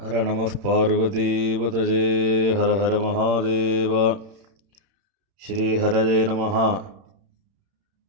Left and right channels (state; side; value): late; left; 31 ms